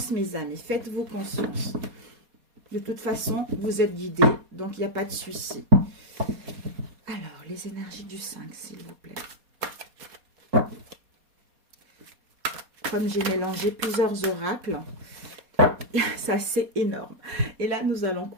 mes amis. Faites-vous confiance. De toute façon, vous êtes guidés. Donc, il n'y a pas de souci. Alors, les énergies du 5, s'il vous plaît. Comme j'ai mélangé plusieurs oracles, ça c'est énorme. Et là, nous allons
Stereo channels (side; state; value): left; late; 4.2 ms